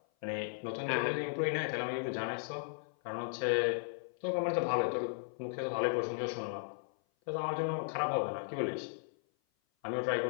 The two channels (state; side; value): silent; right; 54 dB below the other